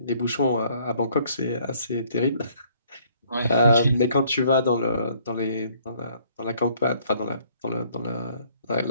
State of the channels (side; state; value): both; inverted; correlation -0.63